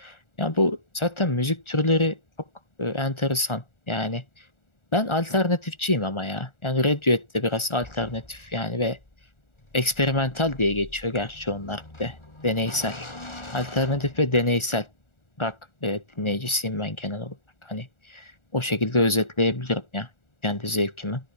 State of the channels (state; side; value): late; right; 1.4 ms